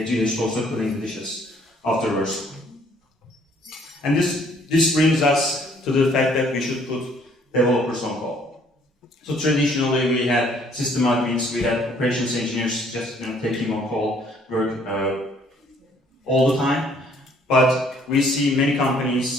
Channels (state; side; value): normal; both; correlation 0.62